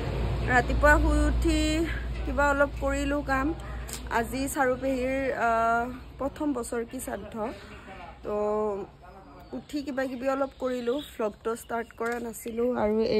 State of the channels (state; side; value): identical; both; correlation 1.00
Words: ৰাতিপুৱা শুই উঠি কিবা অলপ কৰিলো কাম। আজি চাৰুপেহীৰ প্ৰথম বছৰ কি শ্ৰাদ্ধ তো উঠি কিবা কিবি অলপ কৰিলো। ভ্লগটো ষ্টাৰ্ট কৰা নাছিলো আৰু